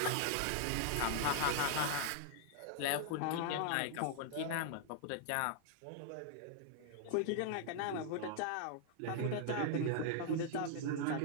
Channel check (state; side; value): different; both; correlation 0.00